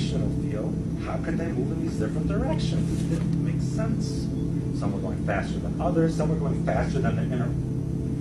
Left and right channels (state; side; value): identical; both; correlation 1.00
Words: field, how could they move in these different directions? It didn't make sense. Some were going faster than others. Some were going faster than the inner